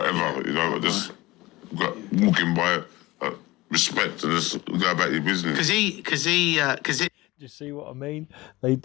You know, I just got walking by, respect, and just go about your business. Because Do you see what I mean? They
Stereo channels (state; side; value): quieter; right; 20.1 dB